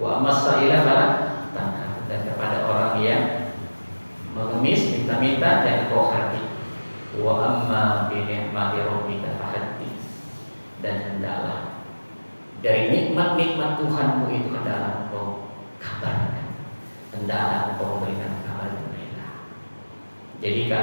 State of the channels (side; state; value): both; inverted; correlation -1.00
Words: takhar, dan kepada orang yang mengemis minta-minta jangan kau hati. Wa amma bi ni'mati rabbika fahaddits, dan hendaklah dari nikmat-nikmat Tuhanmu itu hendaklah engkau kabarkan, hendaklah engkau memberikan kabar gembira. Jadi